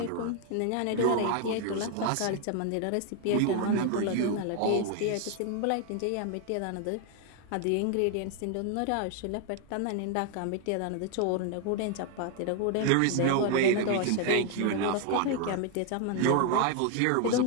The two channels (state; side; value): different; both; correlation 0.00